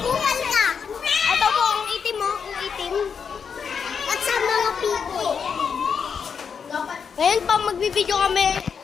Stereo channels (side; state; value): right; quieter; 6.5 dB